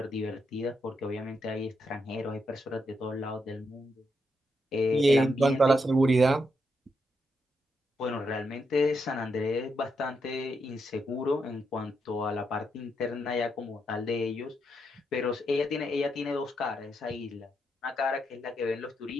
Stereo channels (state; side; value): normal; both; correlation 0.81